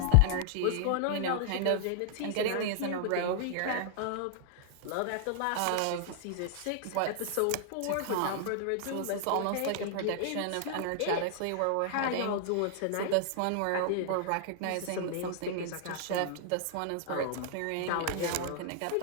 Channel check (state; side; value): different; both; correlation -0.01